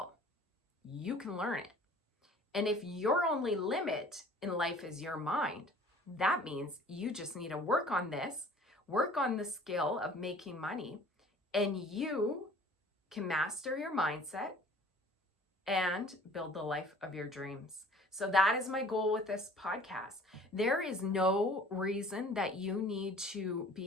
you can learn it. And if your only limit in life is your mind, that means you just need to work on this, work on the skill of making money, and you can master your mindset and build the life of your dreams. So that is my goal with this podcast. There is no reason that you need to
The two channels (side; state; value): both; normal; correlation 0.50